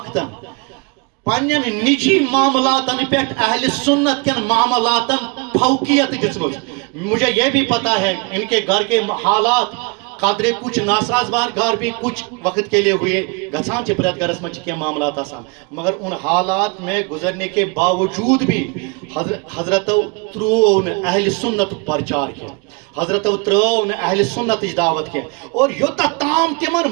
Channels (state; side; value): quieter; left; 31.2 dB